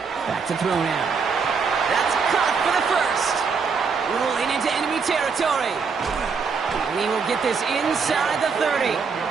Back to throw now. That's caught for the first. Rolling into enemy territory. And he will get this inside the 30.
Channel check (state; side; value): quieter; left; 5.4 dB